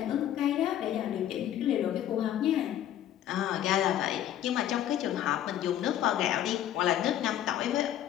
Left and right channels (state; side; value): quieter; right; 11.4 dB